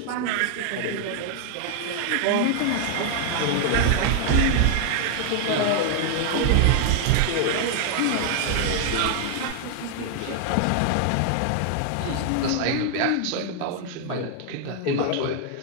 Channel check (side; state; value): both; different; correlation 0.00